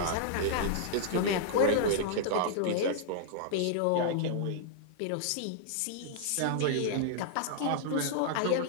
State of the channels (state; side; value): different; both; correlation -0.01